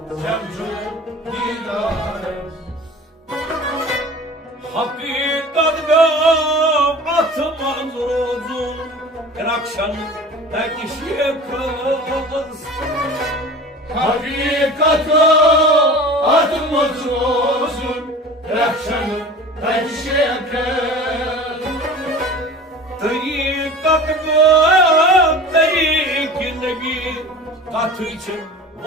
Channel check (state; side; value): normal; both; correlation 0.39